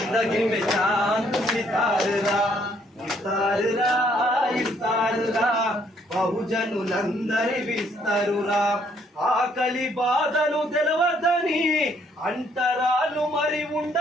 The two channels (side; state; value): both; normal; correlation 0.67